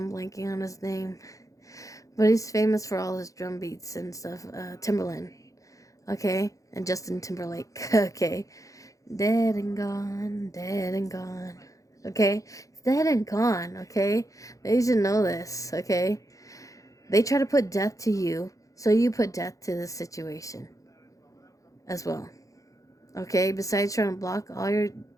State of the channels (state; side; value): late; right; 0.16 ms